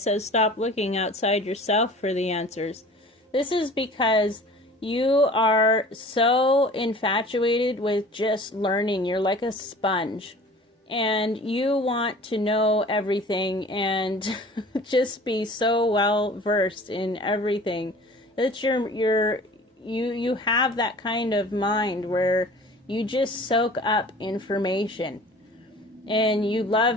stop looking outside yourself for the answers, this is because you are so infatuated with just learning. You're like a sponge. And you want to know everything and just be so well versed in everything. That you have that kind of mind where you just soak up information. And you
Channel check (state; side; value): normal; both; correlation 0.44